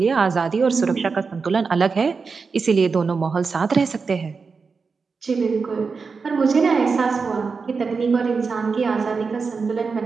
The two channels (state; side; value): quieter; left; 4.9 dB